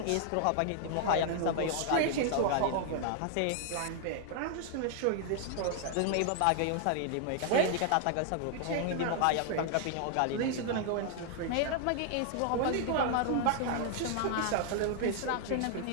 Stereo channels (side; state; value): both; different; correlation 0.00